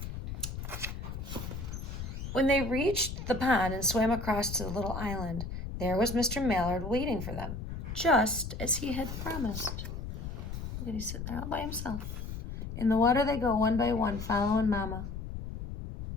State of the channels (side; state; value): left; noise; rumble, 7 dB below the sound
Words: When they reached the pond and swam across to the little island, there was Mr. Mallard waiting for them, just as he had promised. Look at, he's sitting there all by himself. In the water they go, one by one, following Mama.